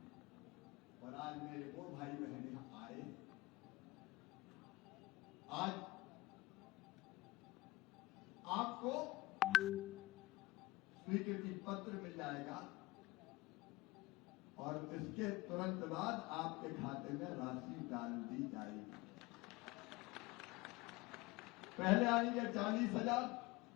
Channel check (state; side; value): quieter; right; 20.1 dB